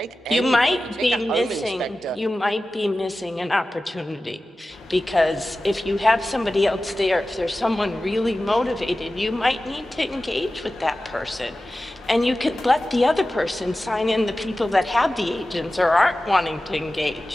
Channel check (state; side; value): normal; both; correlation 0.95